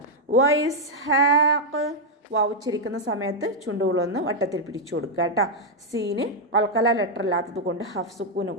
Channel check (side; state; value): both; normal; correlation -0.01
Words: വ ഇസ്ഹാഖ്. വാവ് ഉച്ചരിക്കുന്ന സമയത്ത് ചുണ്ടുകളൊന്ന് വട്ടത്തിൽ പിടിച്ചു കൊടുക്കുക കേട്ടോ. സീന് ഖൽഖല ലെറ്റർ അല്ലാത്തത് കൊണ്ട് ഹഫ് സുക്കൂന്